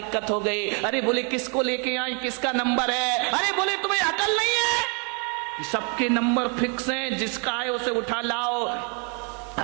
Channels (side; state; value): left; quieter; 37.5 dB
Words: हो गई? अरे बोले किसको लेके आए, किसका नंबर है? अरे बोले तुम्हें अकल नहीं है, सबके नंबर फिक्स हैं, जिसका है उसे उठा लाओ।